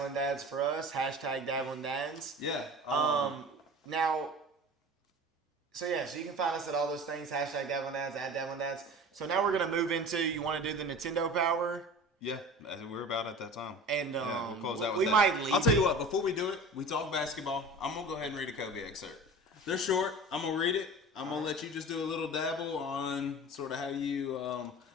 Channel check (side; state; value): both; normal; correlation 0.38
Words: Dads for us. Hashtag Dabbling Dads. yeah. Now, so you can find us at all those things. Hashtag Dabbling Dads, at Dabbling Dads. So now we're going to move into, you want to do the Nintendo Power? Yeah, we're about at that time. And we'll close out with we that. might leave. I'll tell you what, before we do it, we talk basketball. I'm going to go ahead and read a Kobe excerpt. They're short. I'm going to read it. I'm going to let you just do a little dabble on sort of how you...